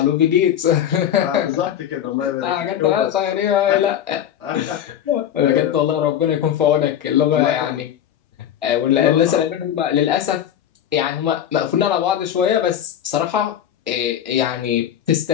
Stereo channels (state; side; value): quieter; right; 10.1 dB